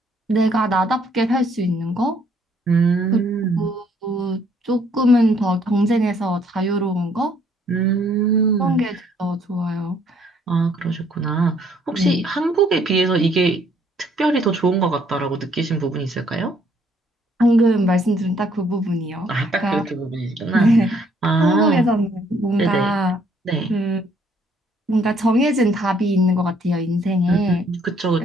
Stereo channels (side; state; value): both; normal; correlation 0.65